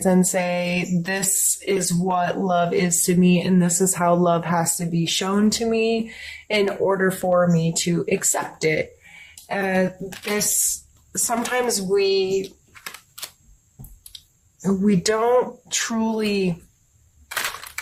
and say, this is what love is to me and this is how love has to be shown to me in order for me to accept it? Sometimes we don't truly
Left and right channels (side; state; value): both; identical; correlation 1.00